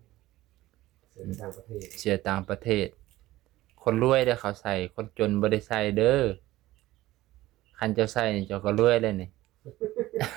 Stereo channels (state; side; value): quieter; left; 16.6 dB